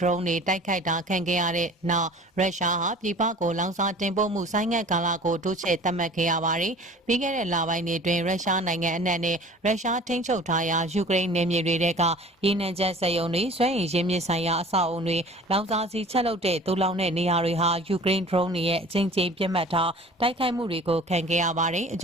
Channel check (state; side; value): normal; both; correlation 0.45